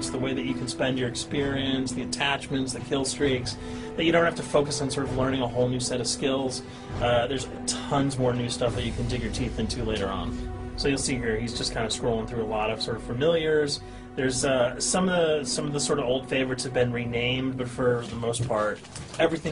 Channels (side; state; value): both; identical; correlation 1.00